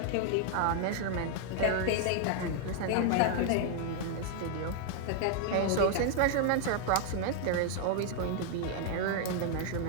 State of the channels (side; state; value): both; different; correlation 0.00